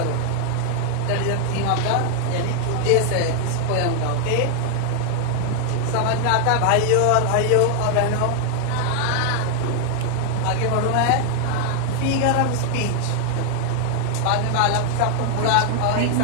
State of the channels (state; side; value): different; both; correlation 0.00